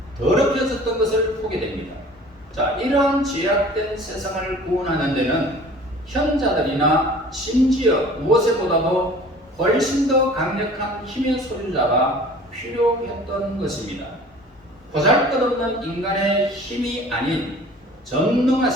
더럽혀졌던 것을 보게 됩니다. 자, 이러한 죄악된 세상을 구원하는 데는 현자들이나 심지어 무엇보다도 훨씬 더 강력한 힘의 소유자가 필요했던 것입니다. 보잘것없는 인간의 힘이 아닌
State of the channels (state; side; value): normal; both; correlation 0.46